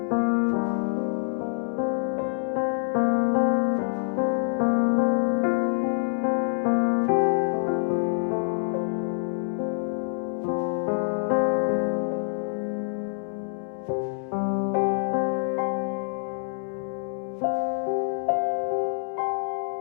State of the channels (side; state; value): right; silent; 60 dB below the other